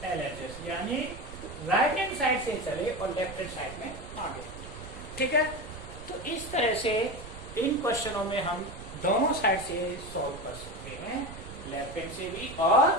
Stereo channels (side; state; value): right; noise; rumble, 13 dB below the sound